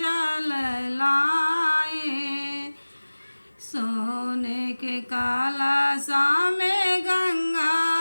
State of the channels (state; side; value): inverted; both; correlation -1.00